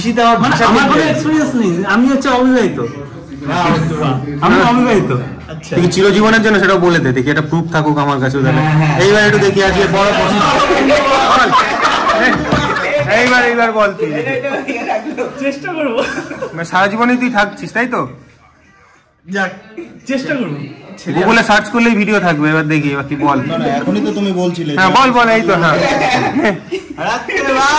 আমার ভাষা। আমার কোনো এক্সপেরিয়েন্স নেই, আমি হচ্ছে অবিবাহিত। আমি অবিবাহিত। আচ্ছা, তুই চিরজীবনের জন্য সেটা বলে দে, দেখি এটা প্রুফ থাকুক আমার কাছে। এইবার একটু দেখি আজকে বড় প্রশ্ন। এইবার বল, তুই চেষ্টা করবো, সারা জীবনই তুই থাকছিস তাই তো? যাক চেষ্টা করবো। গুগলে সার্চ করলেই ভিডিও থাকবে, এবার দেখি এবার কি বল। না এখনই তো তুমি বলছিলে। হ্যাঁ বল, এই তো। হ্যাঁ,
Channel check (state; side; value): identical; both; correlation 1.00